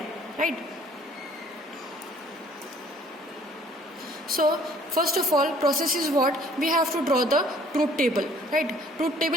right? So first of all, process is what? We have to draw the truth table, right? Truth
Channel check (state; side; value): normal; both; correlation 0.57